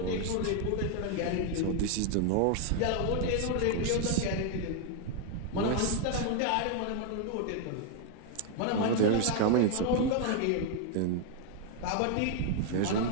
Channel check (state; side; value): different; both; correlation 0.01